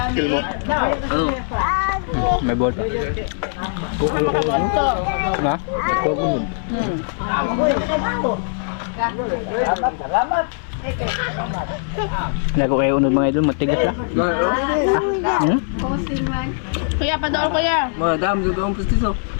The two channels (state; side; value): silent; right; 61 dB below the other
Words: May ball pa. Ha? Lago kayo unod mga idol, matigas na. Hmm? Kuya, padol kuya. Madam, dito ang pustiso.